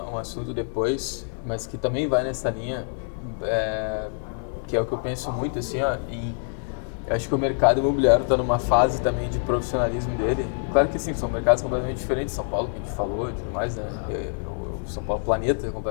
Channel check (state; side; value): silent; right; 61 dB below the other